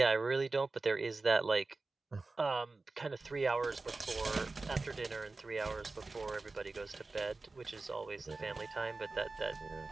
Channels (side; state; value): left; quieter; 3.6 dB